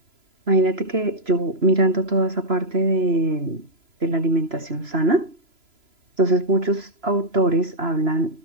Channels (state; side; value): late; left; 3.0 ms